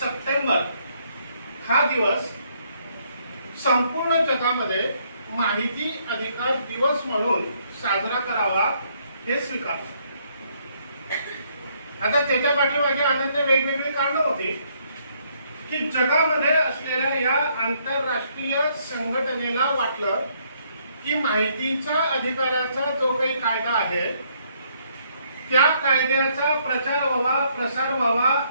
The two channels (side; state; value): both; inverted; correlation -0.70